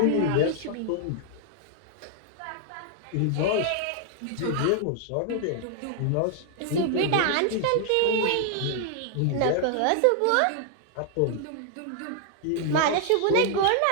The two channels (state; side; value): different; both; correlation 0.00